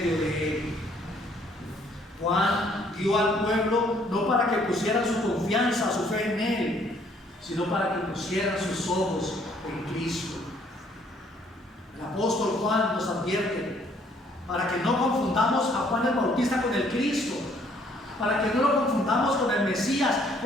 de él. Juan dio al pueblo no para que pusieran su confianza, su fe en él, sino para que pusieran sus ojos en Cristo. El apóstol Juan nos advierte para que no confundamos a Juan el Bautista con el Cristo, para que no lo confundamos con el Mesías,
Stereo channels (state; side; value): normal; both; correlation 0.63